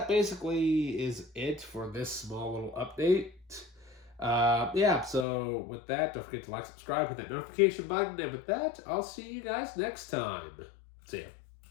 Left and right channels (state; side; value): drops out; right; at 5.2 s